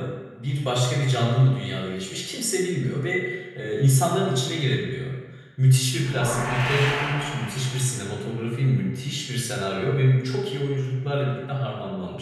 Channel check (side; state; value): both; identical; correlation 1.00